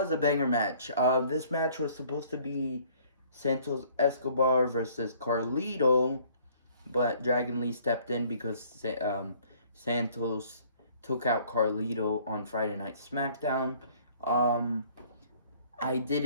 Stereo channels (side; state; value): both; inverted; correlation -0.58